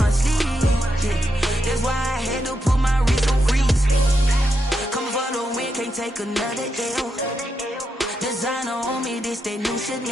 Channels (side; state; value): both; normal; correlation 0.84